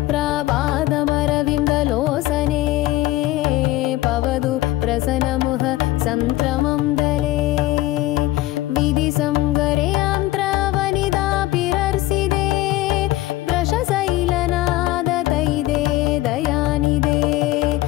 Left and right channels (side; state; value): right; quieter; 16.7 dB